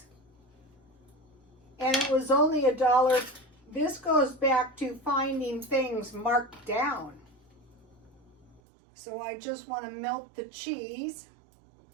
And it was only $1. This goes back to finding things marked down. So I just want to melt the cheese.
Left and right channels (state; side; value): drops out; left; at 8.6 s